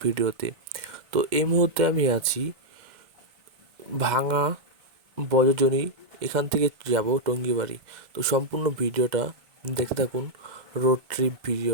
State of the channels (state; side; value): late; left; 2.0 ms